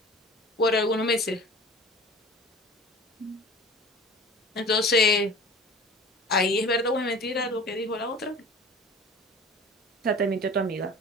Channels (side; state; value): both; normal; correlation 0.42